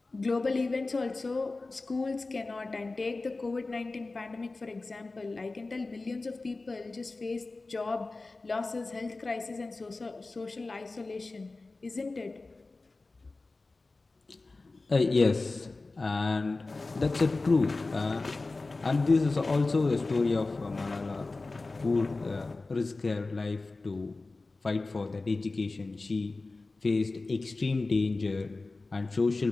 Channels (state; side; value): quieter; right; 3.4 dB